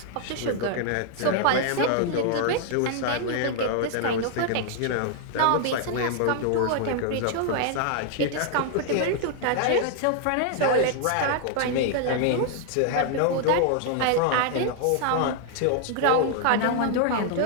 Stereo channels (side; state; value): both; different; correlation 0.00